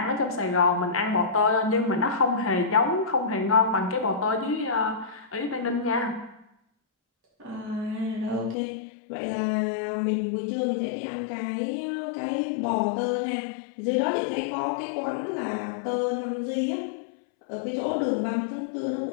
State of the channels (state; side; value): drops out; right; at 8.6 s